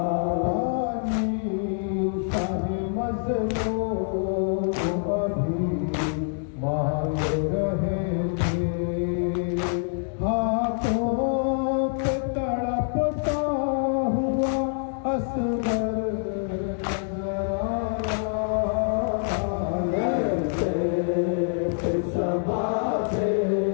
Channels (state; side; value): silent; right; digital silence